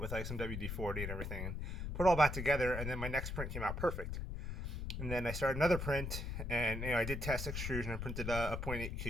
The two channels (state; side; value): noise; left; rumble, 4 dB below the sound